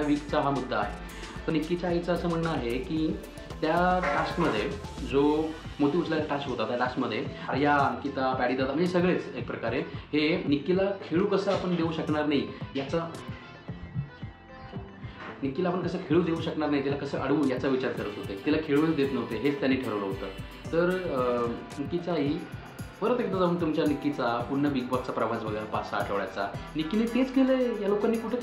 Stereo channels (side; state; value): both; identical; correlation 1.00